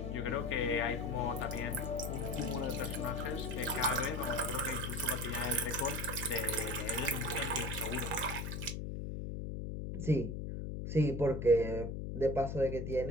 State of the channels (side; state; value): left; noise; hum, 4 dB below the sound